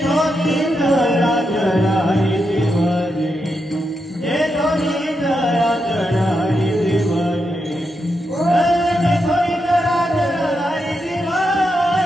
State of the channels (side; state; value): both; normal; correlation 0.84